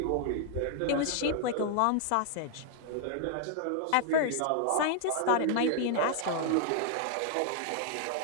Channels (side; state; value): both; different; correlation 0.00